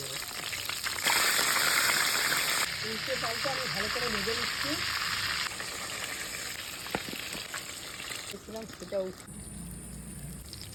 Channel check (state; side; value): identical; both; correlation 1.00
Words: উল্টে পাল্টে আমি ভালো করে ভেজে নিচ্ছি। দেখছিলাম সেটা